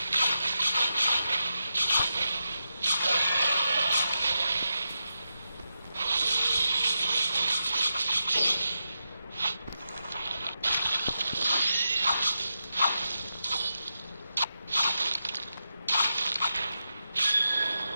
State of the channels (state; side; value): inverted; both; correlation -0.88